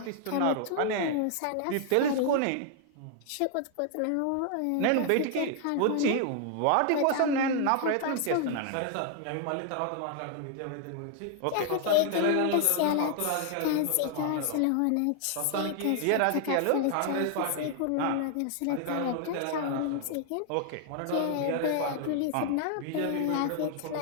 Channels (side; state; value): both; different; correlation 0.00